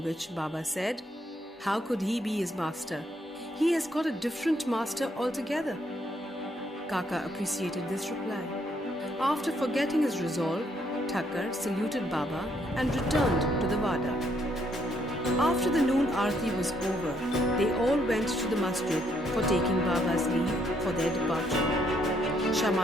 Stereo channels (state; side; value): normal; both; correlation 0.72